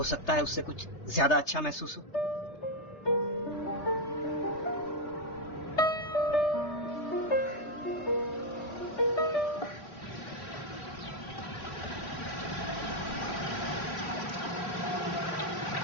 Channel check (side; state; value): right; late; 3.3 ms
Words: सकता है उससे कुछ ज्यादा अच्छा महसूस हो।